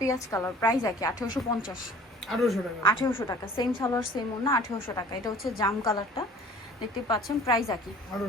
কালার, প্রাইস একই 1850 1800 টাকা। সেম সালোয়ার সেম ওন্না, 1800 টাকা। এটা হচ্ছে জাম কালারটা, দেখতে পাচ্ছেন, প্রাইস একই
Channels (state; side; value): normal; both; correlation 0.48